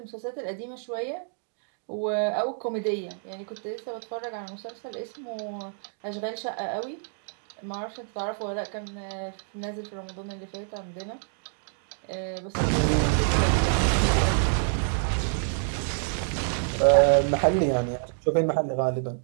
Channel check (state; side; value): silent; left; digital silence